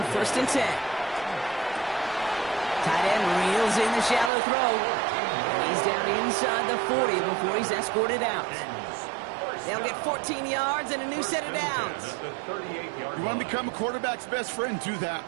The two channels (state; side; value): drops out; left; at 4.3 s